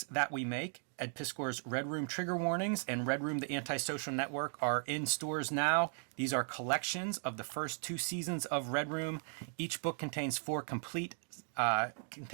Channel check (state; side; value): silent; left; 53 dB below the other